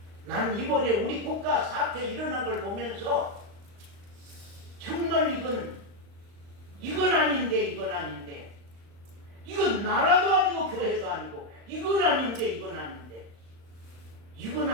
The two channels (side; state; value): left; late; 35 ms